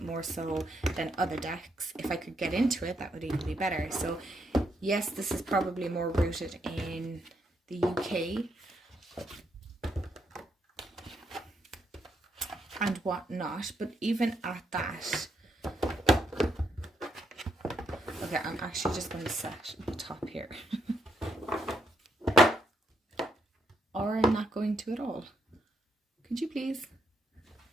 More so than other decks. If I could get into it, that would even be better. So yes, this is probably more rooted in the UK and whatnot, but even at that, okay, I'm actually just going to set the top here. Or I'm not going to at all. Could you please?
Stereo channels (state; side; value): normal; both; correlation 0.77